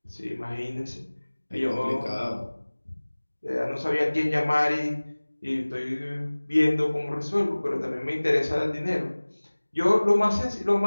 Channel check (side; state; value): both; inverted; correlation -1.00